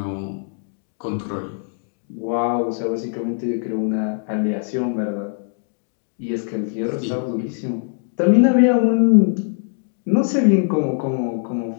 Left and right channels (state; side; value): silent; right; 65 dB below the other